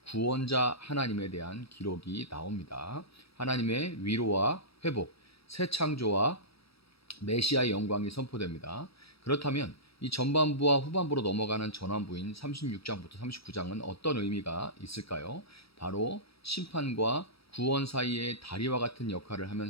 구원자 하나님에 대한 기록이 나옵니다. 하나님의 위로와 회복, 새 창조와 메시아의 영광이 선포됩니다. 그렇다면 이 전반부와 후반부로 넘어가는 전환부인 36장부터 39장은 어떤 의미가 있을까요? 바로 심판과 구원 사이의 다리와 같은 역할을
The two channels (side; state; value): right; late; 0.77 ms